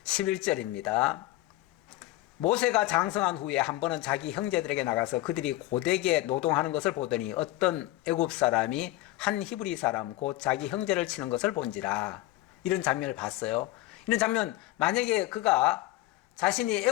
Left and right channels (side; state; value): right; quieter; 17.1 dB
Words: 11절입니다. 모세가 장성한 후에 한 번은 자기 형제들에게 나가서 그들이 고되게 노동하는 것을 보더니 어떤 애굽 사람이 한 히브리 사람 곧 자기 형제를 치는 것을 본지라. 이런 장면을 봤어요. 이런 장면, 만약에 그가 자신이